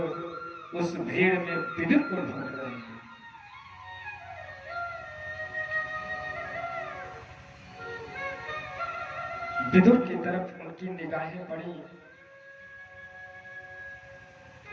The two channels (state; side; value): identical; both; correlation 1.00